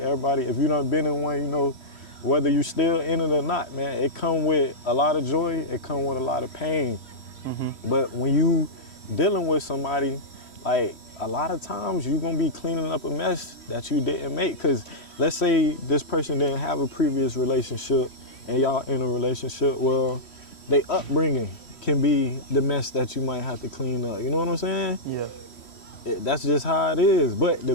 if you done been in one, you know, whether you still in it or not, man, it come with a lot of joy, it come with a lot of pain. But when you dealing with somebody, like, a lot of times you're gonna be cleaning up a mess that you didn't make. Because let's say this person didn't have a previous relationship and y'all in a relationship, well, they upbringing can be the mess that you might have to clean up. You know what I'm saying? That's just how it is. But the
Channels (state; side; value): late; right; 3.1 ms